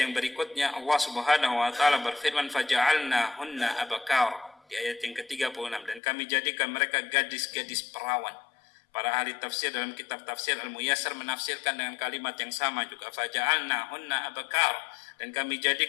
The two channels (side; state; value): right; drops out; at 6.0 s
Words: berikutnya Allah Subhanahu wa taala berfirman, faja'alnahunna abakara, di ayat yang ke-36, dan kami jadikan mereka gadis-gadis perawan. Para ahli tafsir dalam kitab tafsir Al-Muyassar menafsirkan dengan kalimat yang sama juga, faja'alnahunna abakara, dan kami